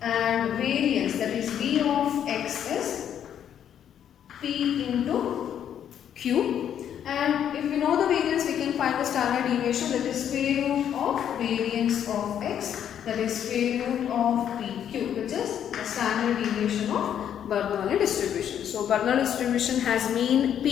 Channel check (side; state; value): right; quieter; 9.5 dB